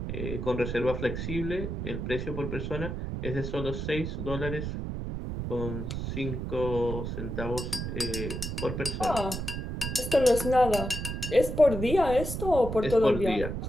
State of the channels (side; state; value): right; noise; rumble, 4 dB below the sound